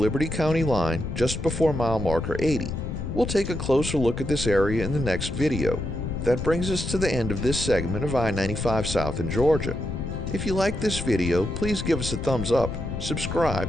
County line just before mile marker 80. We'll take a closer look at this area in the next video. That brings us to the end of this segment of I-95 South in Georgia. If you like this video, please give us a thumbs up,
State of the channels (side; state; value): left; noise; rumble, 5 dB below the sound